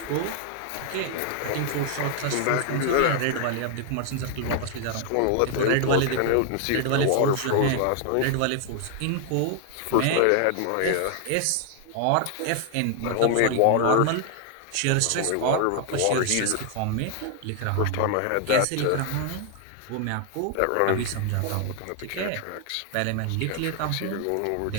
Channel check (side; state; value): both; different; correlation 0.00